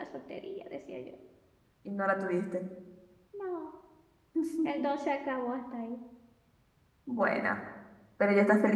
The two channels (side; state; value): both; identical; correlation 1.00